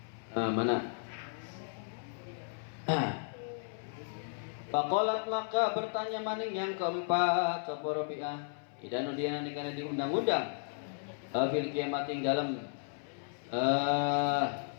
Mana? Faqalat maka bertanya maning yang keempat sapa Robiah. Idanu dia nanti karena diundang-undang fil kiamat ing dalam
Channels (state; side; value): silent; right; 55 dB below the other